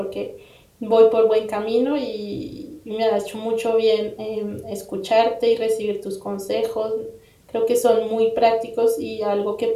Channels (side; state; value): both; identical; correlation 1.00